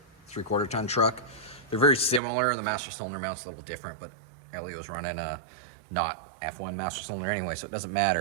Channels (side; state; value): left; drops out; at 2.2 s